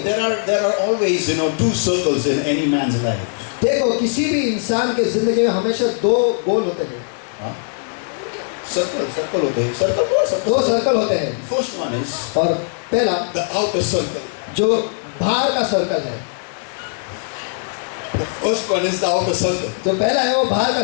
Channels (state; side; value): silent; right; digital silence